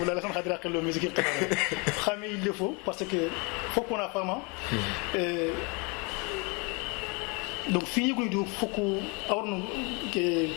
la xam khadira qelo musique qadara xamé il le faut parce que faut qu'on a fama donc fini ko do foko awrno ke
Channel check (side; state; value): right; quieter; 30.7 dB